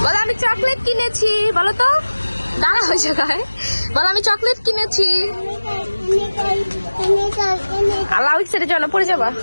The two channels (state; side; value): inverted; both; correlation -1.00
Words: বলো আমি চকলেট কিনেছি, বলো তো। দাঁড়া হয়ে জায়গায় বলো আমি চকলেট কিনেছি। আল্লাহ সেটা জন্য পড়ে যাবা।